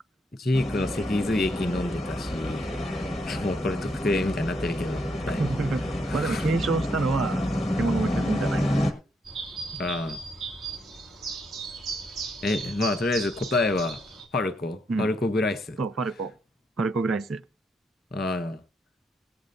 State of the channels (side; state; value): both; normal; correlation 0.77